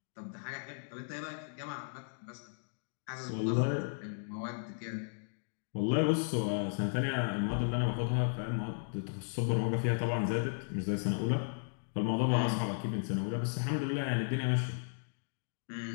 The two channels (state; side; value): silent; right; digital silence